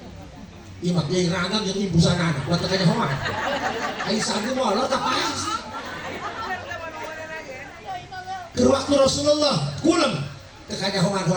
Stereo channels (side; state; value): both; identical; correlation 1.00